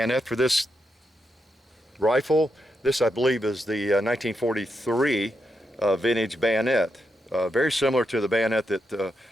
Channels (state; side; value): normal; both; correlation 0.84